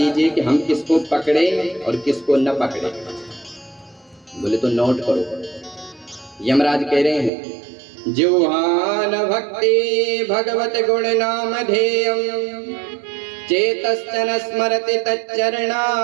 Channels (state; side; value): drops out; left; at 7.3 s